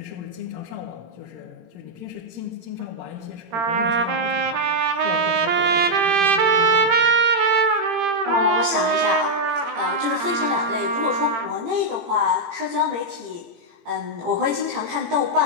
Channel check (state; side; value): late; left; 18 ms